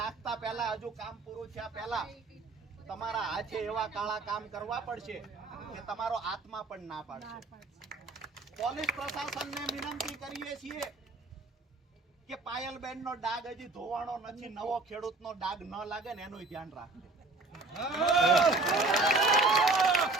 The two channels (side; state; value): left; quieter; 3.4 dB